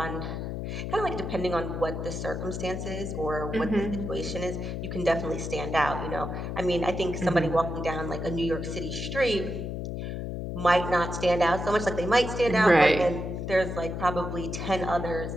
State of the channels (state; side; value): noise; left; hum, 5 dB below the sound